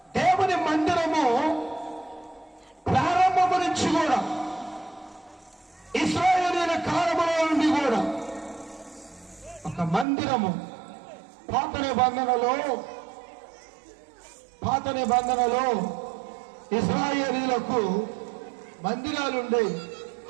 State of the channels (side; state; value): left; drops out; at 10.1 s